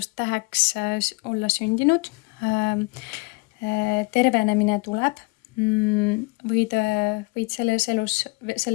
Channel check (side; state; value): right; quieter; 27.1 dB